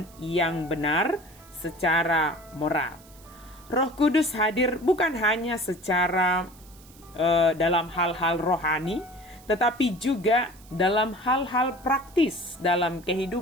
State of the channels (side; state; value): right; noise; hiss, 24 dB below the sound